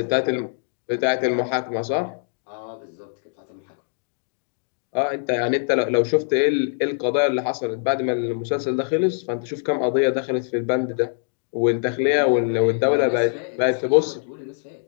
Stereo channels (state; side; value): silent; right; digital silence